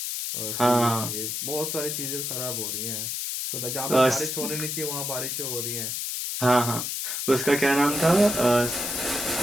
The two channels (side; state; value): left; noise; hiss, 3 dB below the sound